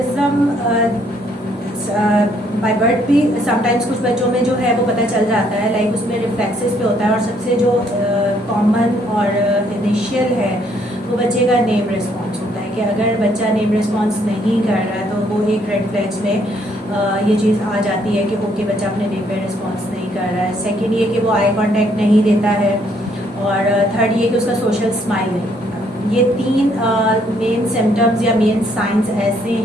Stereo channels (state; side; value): normal; both; correlation 0.68